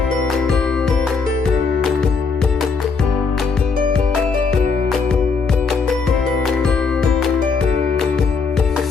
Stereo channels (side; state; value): right; quieter; 4.8 dB